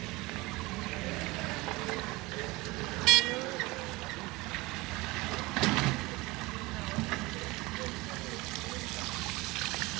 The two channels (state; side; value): quieter; left; 20.7 dB